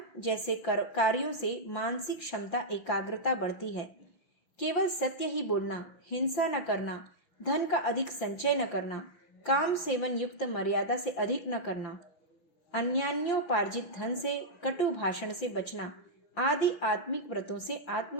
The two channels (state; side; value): late; right; 5.8 ms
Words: जैसे कार्यों से मानसिक क्षमता, एकाग्रता बढ़ती है। केवल सत्य ही बोलना, हिंसा न करना, धन का अधिक संचय न करना, काम सेवन युक्त मर्यादा से अधिक न करना, अन्यान्योपार्जित धन से, कटु भाषण से बचना आदि आत्मिक व्रतों से